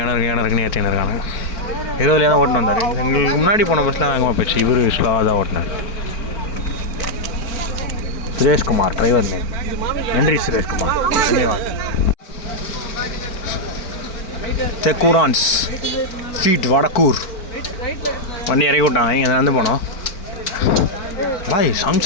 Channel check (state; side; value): late; right; 4.4 ms